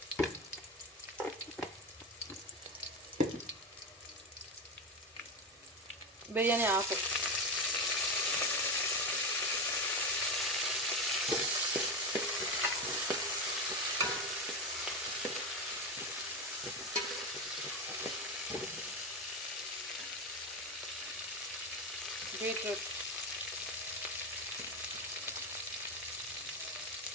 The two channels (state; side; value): normal; both; correlation 0.17